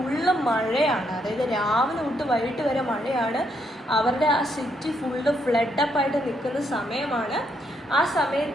മഴയാണ്, അതായത് രാവിലെ തൊട്ട് വൈകിട്ട് വരെ മഴയാണ്. അവരുടെ ആ സിറ്റി ഫുള്ള് ഫ്ലഡപ്പായിട്ട് നിൽക്കുന്ന സമയമാണ്. ആ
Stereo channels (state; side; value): normal; both; correlation 0.75